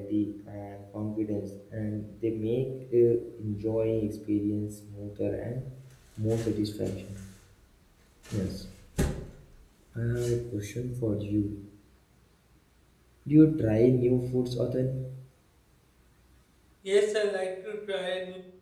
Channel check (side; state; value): both; identical; correlation 1.00